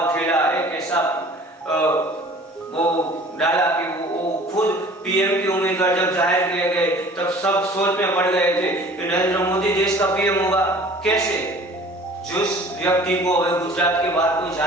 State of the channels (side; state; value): both; normal; correlation 0.48